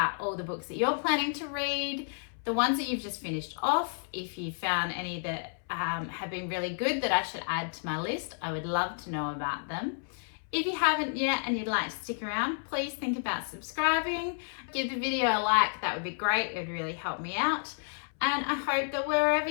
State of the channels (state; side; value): silent; right; 57 dB below the other